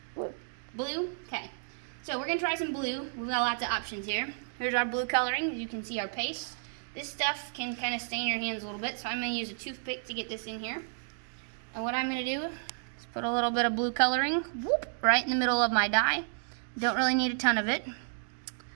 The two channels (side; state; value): left; silent; digital silence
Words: Blue. Blue? Okay. So we're going to try some blue. We've got lots of options here. Here's our blue coloring. You can see our paste. This stuff can kind of stain your hands a little bit, so I'm going to use a toothpick to get this in here. And what I'm going to do is put a little bit of blue coloring right in the middle of my dye. Don't really need a ton of it.